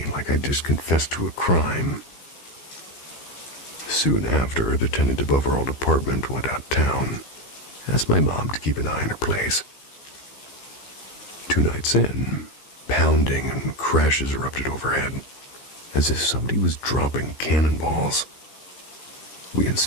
like I'd just confessed to a crime. Soon after, the tenant above our old apartment went out of town, asked my mom to keep an eye on her place. 2 nights in, pounding and crashes erupted overhead, as if somebody was dropping cannonballs. We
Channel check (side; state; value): right; late; 15 ms